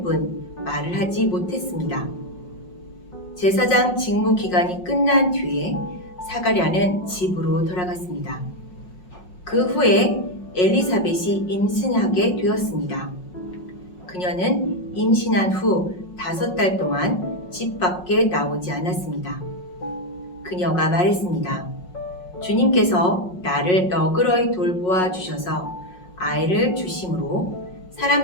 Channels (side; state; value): right; late; 5.5 ms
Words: 뿐 말을 하지 못했습니다. 제사장 직무 기간이 끝난 뒤에 사가랴는 집으로 돌아갔습니다. 그 후에 엘리사벳이 임신하게 되었습니다. 그녀는 임신한 후 5달 동안 집 밖에 나오지 않았습니다. 그녀가 말했습니다. 주님께서 나를 너그러이 돌보아 주셔서 아이를 주심으로